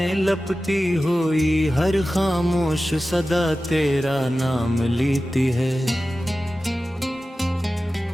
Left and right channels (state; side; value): normal; both; correlation 0.95